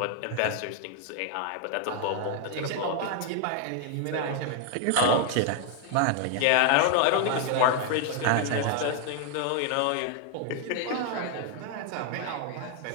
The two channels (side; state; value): both; different; correlation 0.00